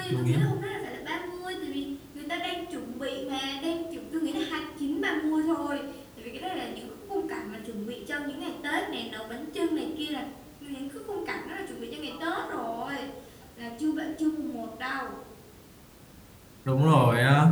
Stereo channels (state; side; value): identical; both; correlation 1.00